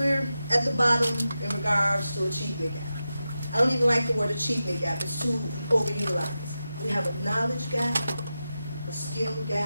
at the bottom in regards to achievement gap. I don't even like the word achievement gap. It's too overutilized. We have a knowledge gap, a skill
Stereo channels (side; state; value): both; inverted; correlation -0.91